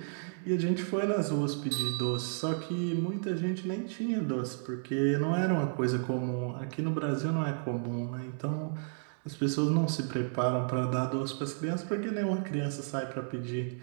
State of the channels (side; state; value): left; silent; 56 dB below the other